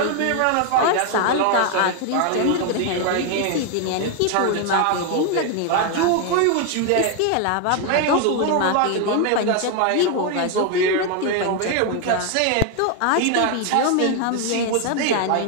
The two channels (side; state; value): both; different; correlation 0.01